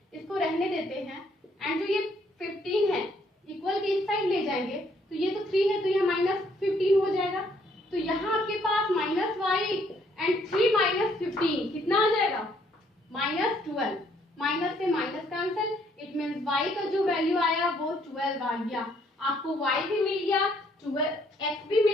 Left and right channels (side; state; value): both; normal; correlation 0.67